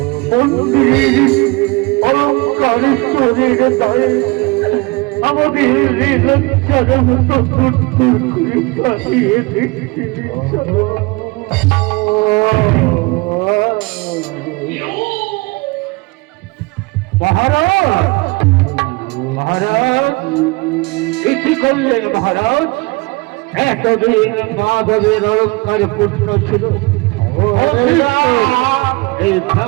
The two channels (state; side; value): quieter; left; 25.0 dB